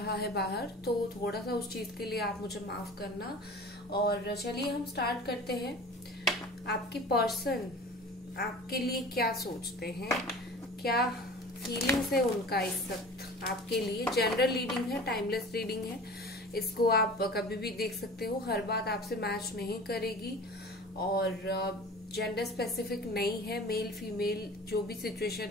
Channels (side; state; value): both; normal; correlation 0.39